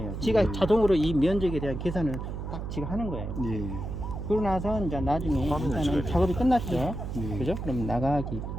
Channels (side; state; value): right; noise; hum, 6 dB below the sound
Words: 지가 자동으로 이 면적에 대한 계산을 딱 지가 하는 거예요. 예. 그러고 나서 이제 나중에 화면을 일단은 찍어야 작업이 끝났죠. 예. 그죠? 그럼 나가기.